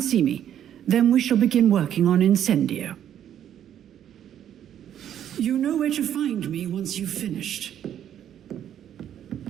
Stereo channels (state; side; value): quieter; left; 10.2 dB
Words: see me. Then we shall begin working on Incendio. You know where to find me once you've finished.